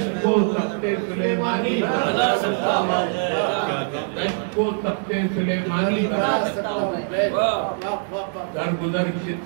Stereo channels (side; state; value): left; silent; 64 dB below the other